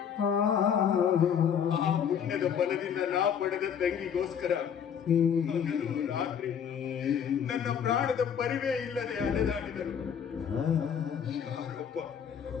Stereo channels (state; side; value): quieter; right; 8.0 dB